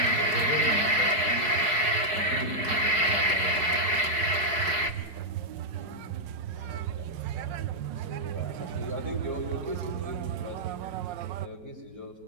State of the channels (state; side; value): late; left; 4.7 ms